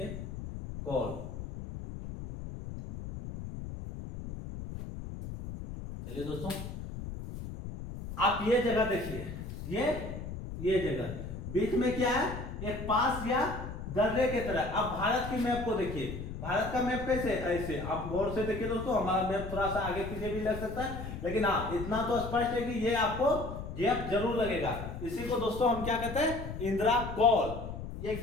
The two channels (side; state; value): left; noise; rumble, 8 dB below the sound